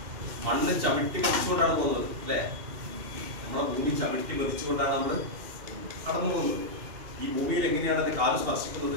മണ്ണ് ചവിട്ടി പതിച്ചുകൊണ്ടാണ് പോകുന്നത് അല്ലേ? നമ്മളെ ഭൂമി ചവിട്ടി പതിച്ചുകൊണ്ടാണ് നമ്മൾ കടന്നു പോകുന്നത്. ഈ ഭൂമിയിൽ എങ്ങനെയാണ് എന്റെ കാല് സ്പർശിക്കുന്നത്,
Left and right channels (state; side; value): late; left; 2.7 ms